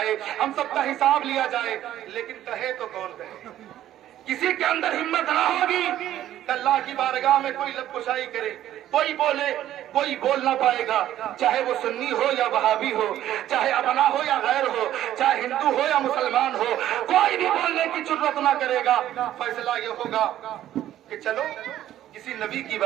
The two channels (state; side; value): quieter; left; 12.5 dB